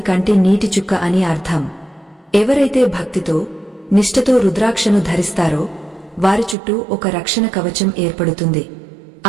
కంటి నీటి చుక్క అని అర్థం. ఎవరైతే భక్తితో నిష్ఠతో రుద్రాక్షను ధరిస్తారో వారి చుట్టూ ఒక రక్షణ కవచం ఏర్పడుతుంది.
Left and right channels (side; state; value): left; drops out; at 6.6 s